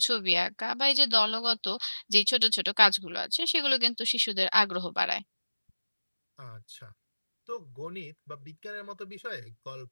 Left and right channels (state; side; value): inverted; both; correlation -1.00